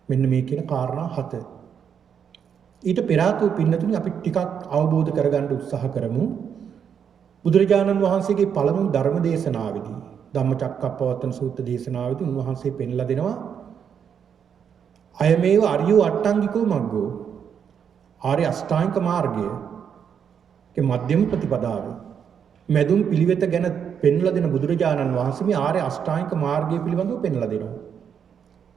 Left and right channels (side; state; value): left; quieter; 7.7 dB